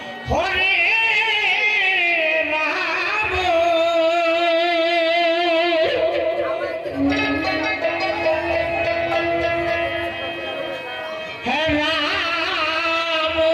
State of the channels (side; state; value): both; identical; correlation 1.00